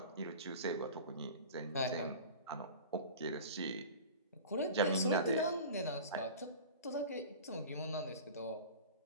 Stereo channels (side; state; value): both; inverted; correlation -0.36